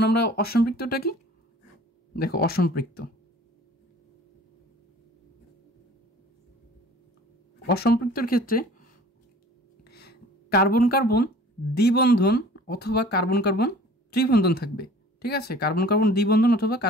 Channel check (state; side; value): normal; both; correlation 0.48